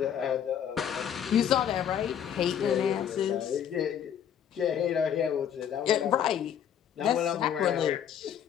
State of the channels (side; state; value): right; quieter; 9.1 dB